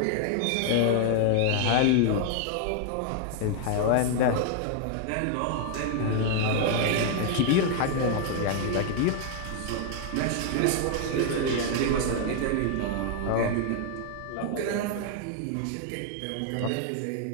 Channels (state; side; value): different; both; correlation 0.00